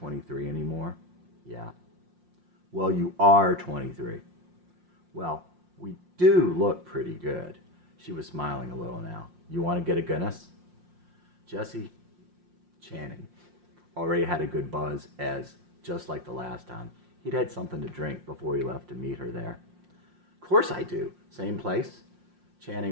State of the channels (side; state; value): left; late; 5.6 ms